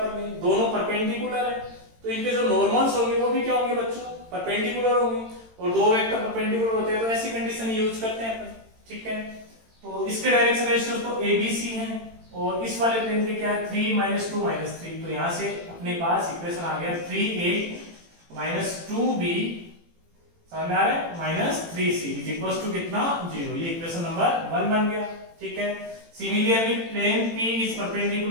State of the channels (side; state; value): left; late; 18 ms